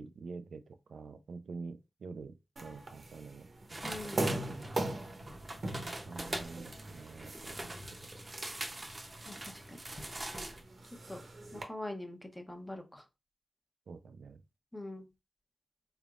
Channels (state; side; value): normal; both; correlation 0.94